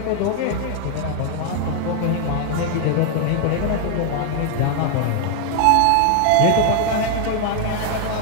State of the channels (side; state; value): both; different; correlation 0.00